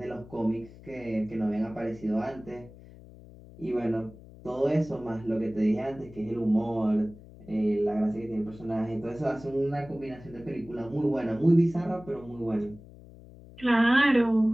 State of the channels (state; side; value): noise; left; hum, 19 dB below the sound